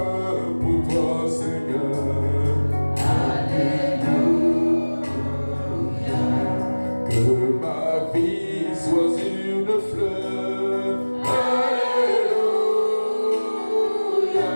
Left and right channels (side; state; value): both; inverted; correlation -1.00